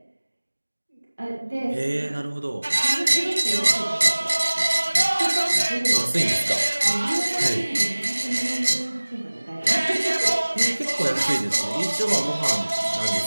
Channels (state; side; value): inverted; both; correlation -1.00